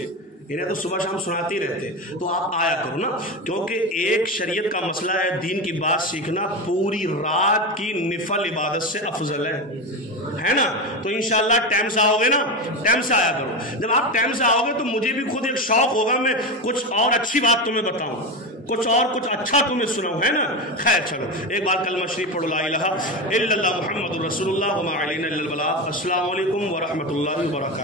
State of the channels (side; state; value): both; normal; correlation 0.19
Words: انہیں تو صبح شام سناتے ہی رہتے، تو آپ آیا کرو نا، کیونکہ ایک شریعت کا مسئلہ ہے دین کی بات سیکھنا پوری رات کی نفل عبادت سے افضل ہے نا۔ تو انشاءاللہ ٹائم سے آؤ گے نا، ٹائم سے آیا کرو۔ جب آپ ٹائم سے آؤ گے تو مجھے بھی خود ایک شوق ہوگا میں کچھ اور اچھی بات تمہیں بتاؤں، کچھ اچھا تمہیں سناؤں، ہے نا۔ خیر چلو ایک بار کلمہ شریف پڑھو، لا الہ الا اللہ محمد رسول اللہ وما علینا الا البلاغ۔ السلام علیکم ورحمۃ اللہ